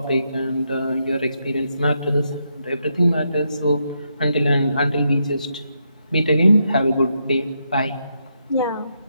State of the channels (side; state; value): both; inverted; correlation -0.81